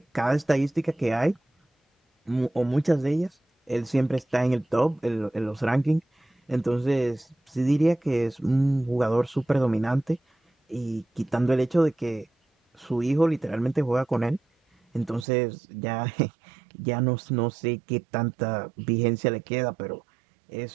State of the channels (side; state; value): left; drops out; at 15.2 s